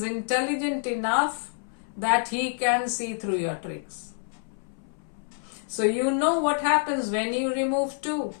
intelligent enough that he can see through your tricks. So you know what happens when you remove 2.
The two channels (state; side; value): silent; right; 60 dB below the other